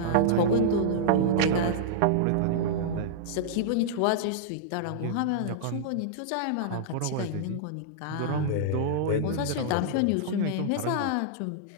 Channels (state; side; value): different; both; correlation -0.02